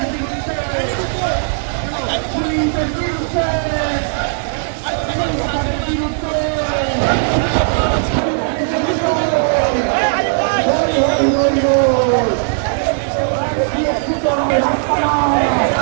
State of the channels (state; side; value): silent; left; digital silence